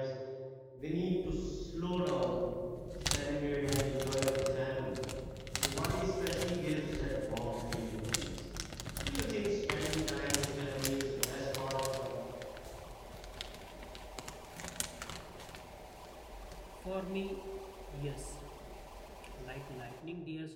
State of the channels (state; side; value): identical; both; correlation 1.00